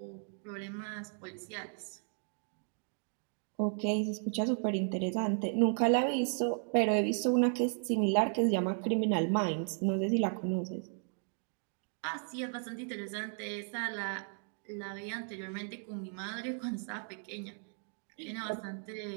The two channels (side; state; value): left; silent; 54 dB below the other